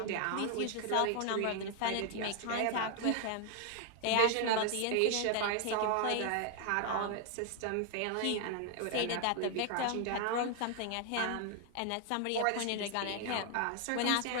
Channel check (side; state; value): both; different; correlation 0.00